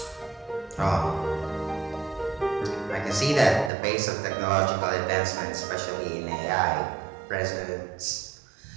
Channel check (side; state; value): left; drops out; at 3.7 s